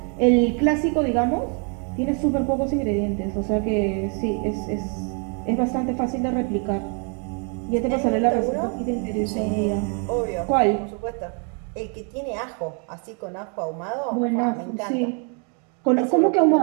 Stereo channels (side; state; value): left; quieter; 39.1 dB